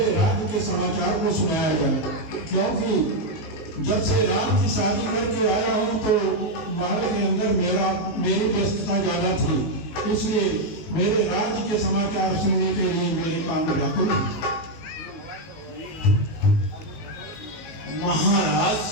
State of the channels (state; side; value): late; right; 19 ms